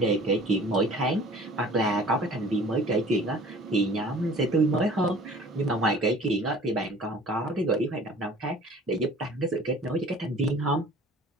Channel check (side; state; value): both; normal; correlation 0.48